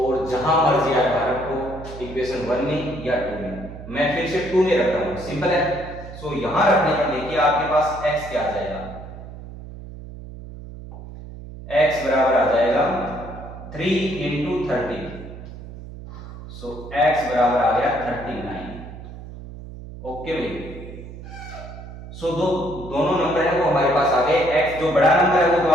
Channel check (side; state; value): right; noise; hum, 13 dB below the sound